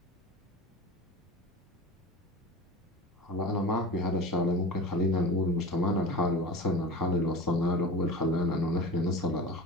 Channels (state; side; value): normal; both; correlation 0.31